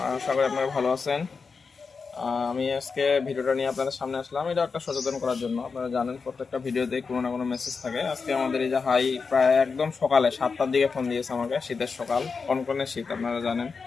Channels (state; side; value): quieter; right; 5.0 dB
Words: আশা করি আপনারা ভালো আছেন। আমি আজকে ভিডিওটা নিয়ে আপনাদের সামনে আসলাম। এটা একটা সচেতন করার জন্য। আপনারা জানেন প্রত্যেকটা ভিডিওতেই কোনো না কোনো মেসেজ থাকে। আজকে আমাদের এই যে হাই প্রায় একদম সকালে 7টার দিকে ফোন দিয়েছে আমাকে, শীতের সকাল, কনকনে শীত আপনারা জানেন।